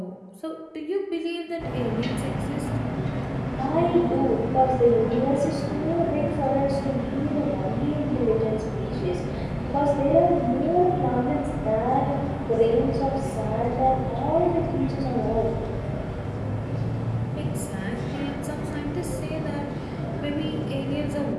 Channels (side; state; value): both; identical; correlation 1.00